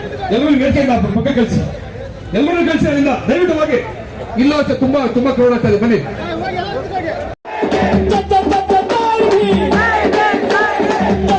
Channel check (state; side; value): identical; both; correlation 1.00